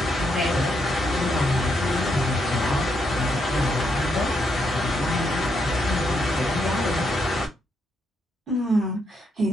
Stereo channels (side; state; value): both; normal; correlation 0.78